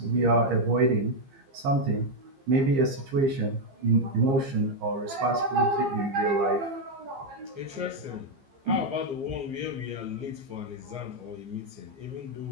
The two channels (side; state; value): left; late; 15 ms